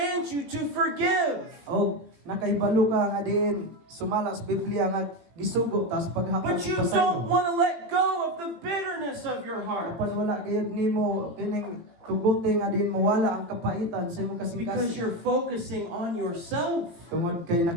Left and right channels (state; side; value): late; left; 18 ms